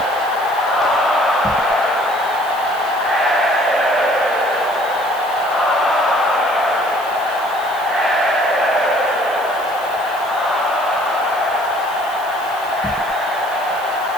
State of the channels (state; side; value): noise; right; hiss, 19 dB below the sound